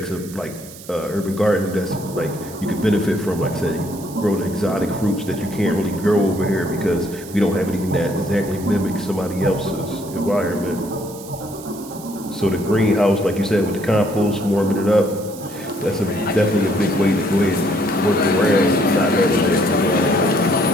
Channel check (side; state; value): right; noise; hiss, 17 dB below the sound